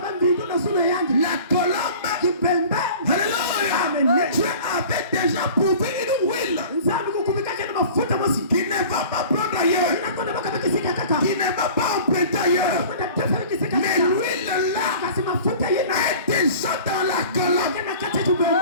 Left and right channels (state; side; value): inverted; both; correlation -0.43